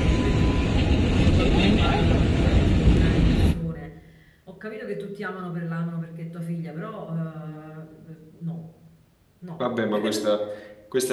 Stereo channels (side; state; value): both; identical; correlation 1.00